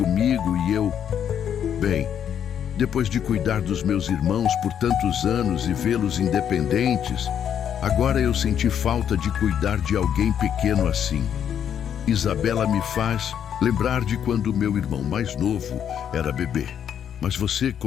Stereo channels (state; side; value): quieter; right; 8.9 dB